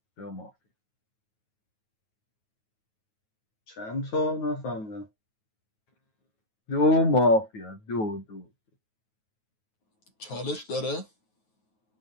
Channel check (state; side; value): late; right; 9.4 ms